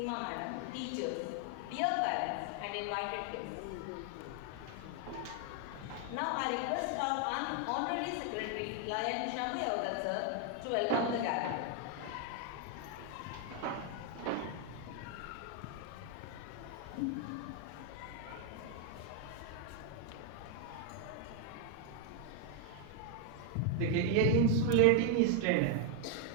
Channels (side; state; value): both; different; correlation 0.01